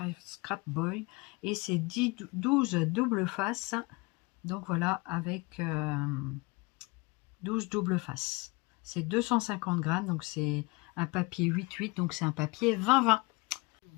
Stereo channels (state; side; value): quieter; right; 26.1 dB